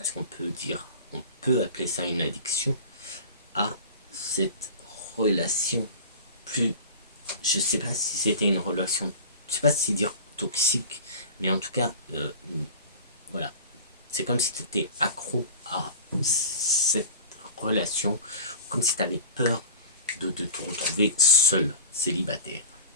qu'on peut appeler ça une addiction à cette relation. Plus, je sais pas si c'était une relation, je sais pas si dire toxique, mais en tout cas, voilà, c'est comme si tu étais accro à cette relation, comme si tu avais peur de te retrouver seul, célibataire.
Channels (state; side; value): inverted; both; correlation -0.36